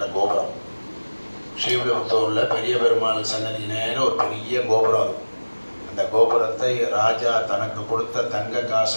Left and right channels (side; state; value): both; inverted; correlation -1.00